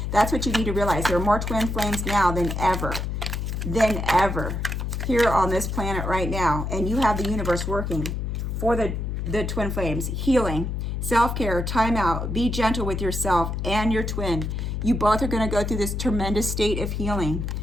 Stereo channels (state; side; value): noise; left; hum, 3 dB below the sound